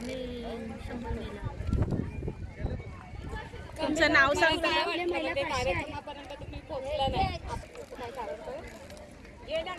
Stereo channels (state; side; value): identical; both; correlation 1.00